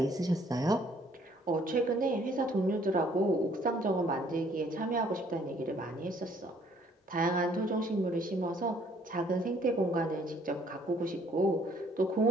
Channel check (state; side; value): normal; both; correlation 0.62